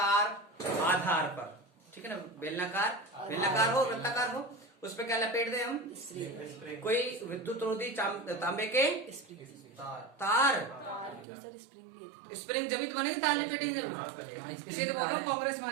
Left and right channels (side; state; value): left; drops out; at 11.2 s